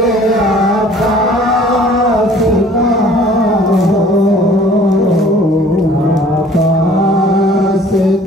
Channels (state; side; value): normal; both; correlation 0.52